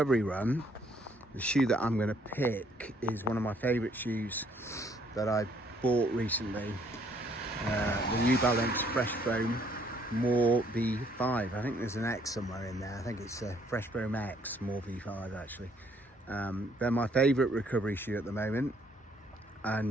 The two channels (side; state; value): both; normal; correlation 0.66